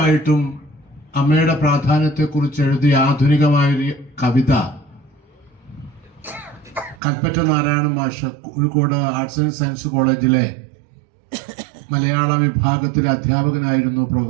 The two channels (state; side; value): drops out; left; at 7.0 s